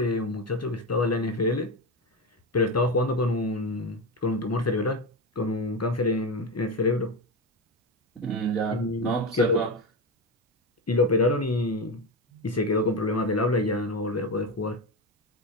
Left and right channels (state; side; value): normal; both; correlation 0.17